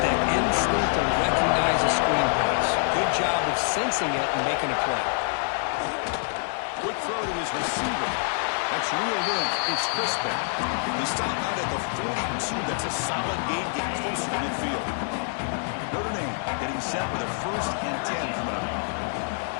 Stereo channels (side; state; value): right; silent; 61 dB below the other